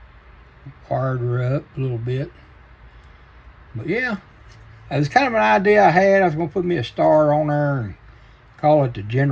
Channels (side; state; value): both; identical; correlation 1.00